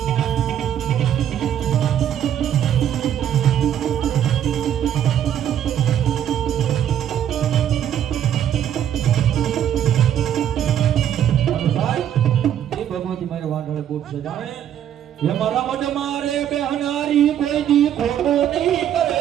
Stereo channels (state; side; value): quieter; left; 10.2 dB